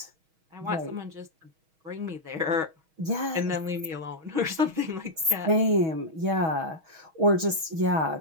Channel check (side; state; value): left; late; 6.3 ms